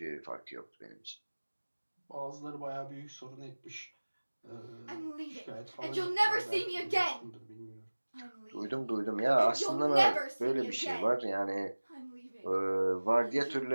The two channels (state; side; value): inverted; both; correlation -1.00